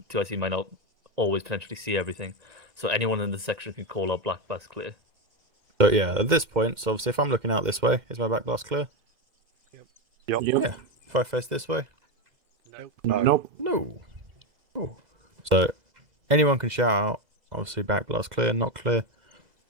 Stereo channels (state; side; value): late; left; 2.0 ms